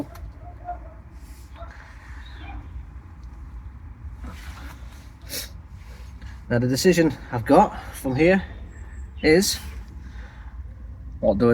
Now the decision I've got from here is, what do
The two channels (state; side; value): identical; both; correlation 1.00